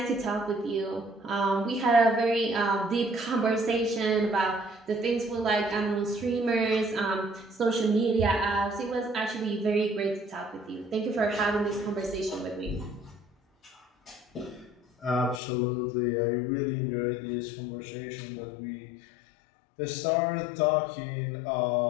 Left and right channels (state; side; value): drops out; right; at 15.4 s